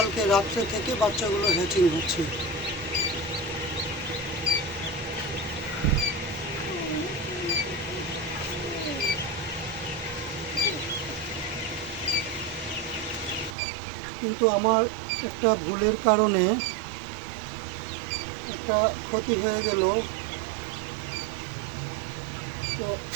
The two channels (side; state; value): left; drops out; at 13.6 s